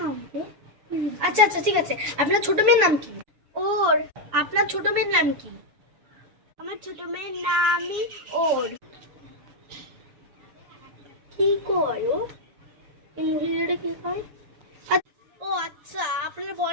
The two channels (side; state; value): left; late; 6.9 ms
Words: রে? আচ্ছা আচ্ছা ঠিক আছে। আপনার ছোট মেয়ের নাম কি? ওর। আপনার ছোট মেয়ের নাম কি? আমার ছোট মেয়ের নামই ওর। কি করো? এই মহিলাটা কি হয়? ও আচ্ছা, আপনার